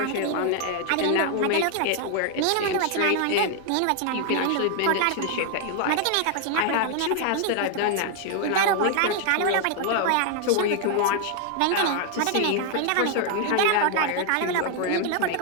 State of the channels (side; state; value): both; different; correlation 0.00